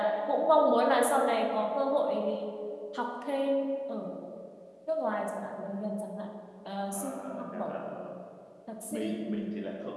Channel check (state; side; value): identical; both; correlation 1.00